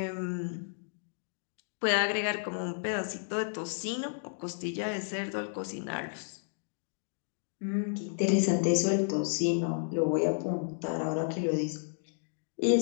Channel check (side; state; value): right; silent; digital silence